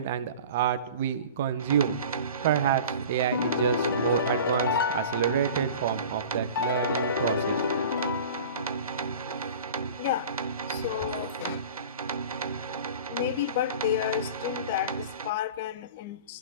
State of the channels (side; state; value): both; inverted; correlation -0.39